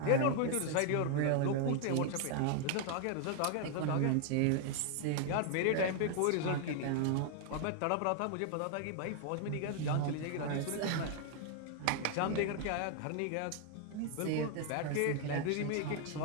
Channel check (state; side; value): different; both; correlation 0.00